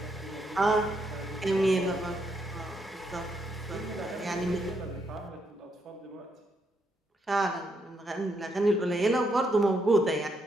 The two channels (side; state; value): both; normal; correlation 0.77